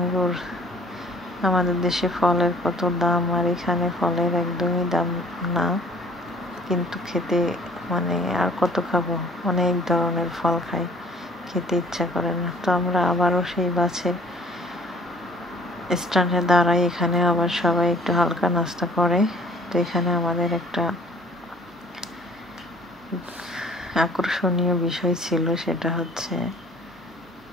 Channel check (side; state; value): both; normal; correlation 0.53